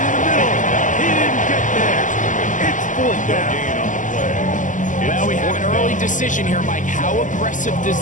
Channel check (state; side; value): late; right; 0.37 ms